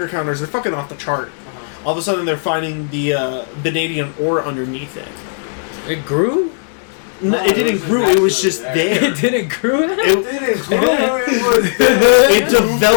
counters. They're fucking off the chart. All of a sudden, they're finding the vanadium ore underneath it. It grew? No, it didn't grow. It was just there. It didn't grow? It didn't grow. It was there. It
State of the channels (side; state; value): right; silent; digital silence